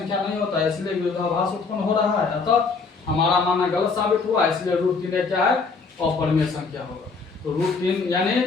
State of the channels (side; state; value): right; quieter; 4.6 dB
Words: नहीं होता है, इसलिए विरोधाभास उत्पन्न हो रहा है। अतः हमारा मानना गलत साबित हुआ, इसलिए √3 क्या है, अपरिमेय संख्या होगा। तो √3 यानी